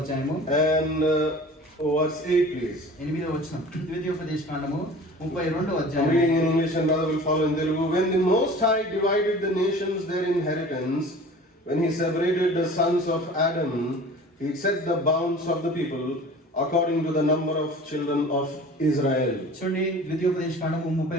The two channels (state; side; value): normal; both; correlation 0.42